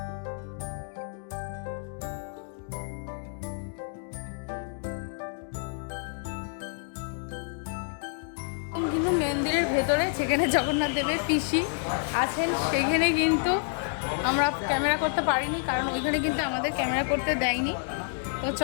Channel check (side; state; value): right; silent; 59 dB below the other